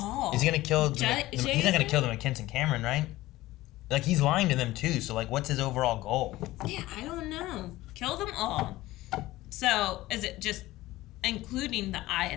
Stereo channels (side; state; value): right; quieter; 17.3 dB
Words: Is he gonna kill he's not Jason? gonna kill the McKinson Cameron, right? Like, he's lying to them too, so like, what's his overall goal? Yeah, I don't know. Kill them all. So, is it just including the